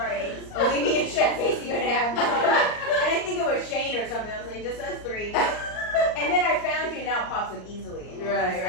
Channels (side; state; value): right; late; 38 ms